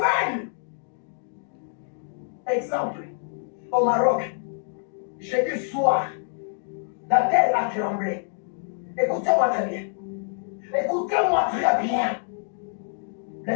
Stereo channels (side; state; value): right; silent; 61 dB below the other